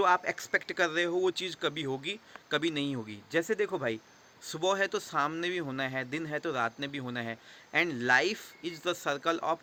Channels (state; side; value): identical; both; correlation 1.00